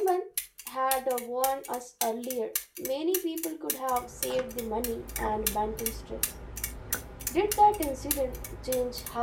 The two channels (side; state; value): both; identical; correlation 1.00